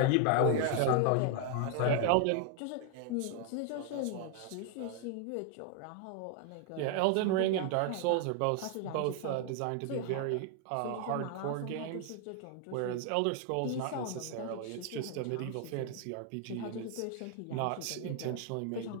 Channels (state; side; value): different; both; correlation 0.00